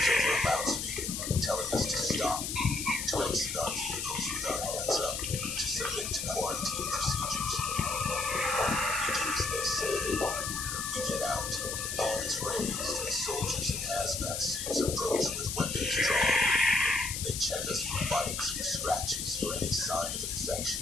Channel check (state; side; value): noise; left; hiss, 4 dB below the sound